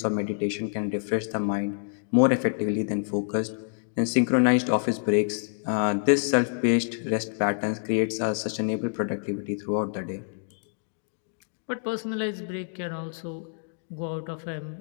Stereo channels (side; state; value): right; silent; digital silence